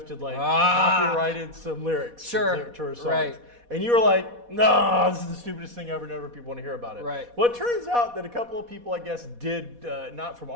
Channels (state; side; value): late; left; 4.1 ms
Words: had copyrighted some lyrics to her songs. Right. And you were like, no, this is the stupidest thing ever. Never people want to hear about it. Right. Well, it turns out that a couple of people, I guess, did, not from